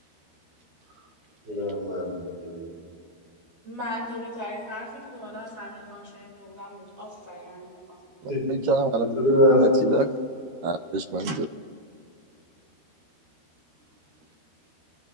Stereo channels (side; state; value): left; late; 13 ms